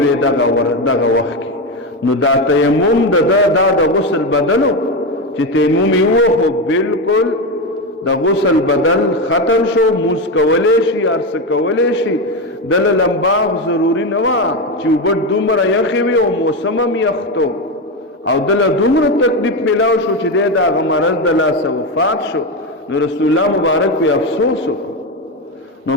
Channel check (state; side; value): normal; both; correlation 0.13